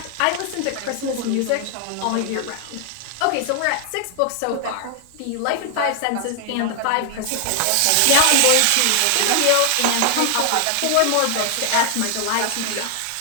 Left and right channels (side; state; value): both; different; correlation 0.00